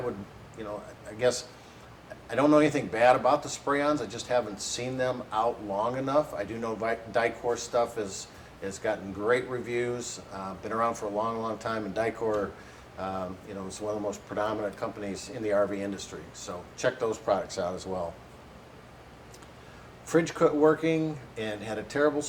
you know, I guess I don't know anything bad about the spray-ons. I just haven't seen them out long enough. I do know Dicor stuff has gotten great reviews. Been around for a long, long time, and Dicor, you know, is one of the most predominant companies in the RV industry. So check those products out as well. Fridge quit working and had a terrible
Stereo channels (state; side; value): identical; both; correlation 1.00